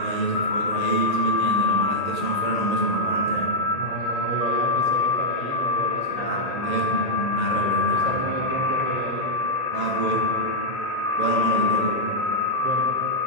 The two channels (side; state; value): right; late; 1.8 ms